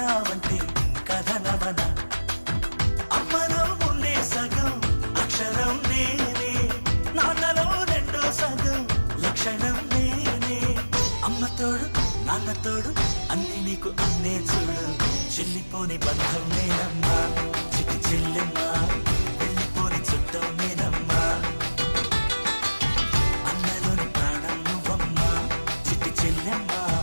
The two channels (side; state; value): both; inverted; correlation -1.00